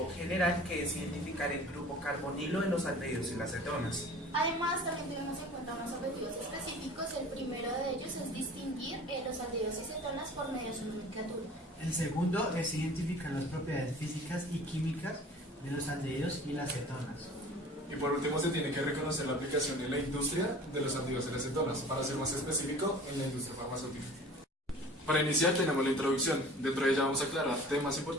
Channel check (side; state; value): both; normal; correlation 0.44